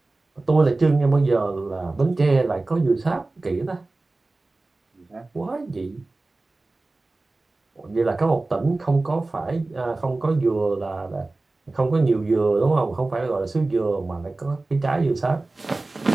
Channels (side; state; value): left; quieter; 3.2 dB